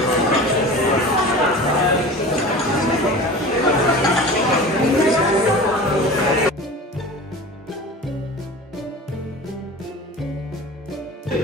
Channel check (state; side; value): normal; both; correlation 0.36